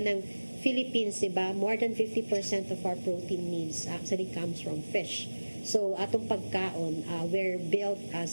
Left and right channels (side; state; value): both; inverted; correlation -1.00